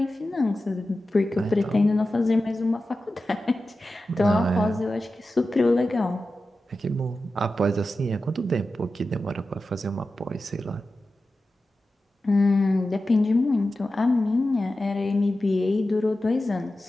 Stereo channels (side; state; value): both; normal; correlation 0.93